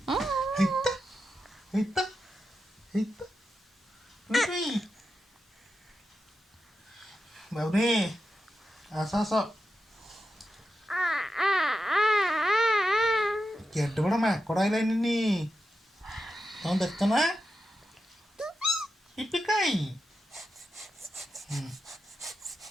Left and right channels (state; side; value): normal; both; correlation 0.89